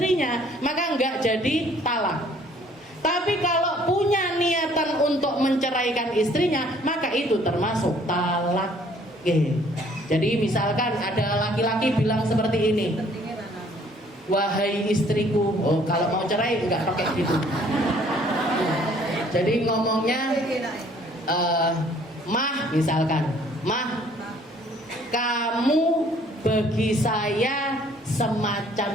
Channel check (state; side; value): normal; both; correlation 0.59